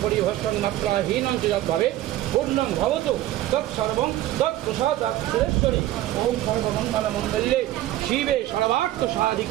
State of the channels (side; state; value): left; quieter; 14.7 dB